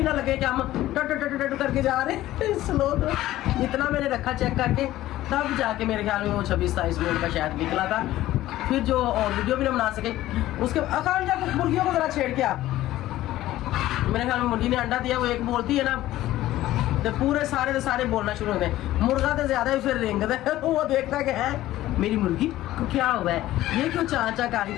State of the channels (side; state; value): right; quieter; 15.1 dB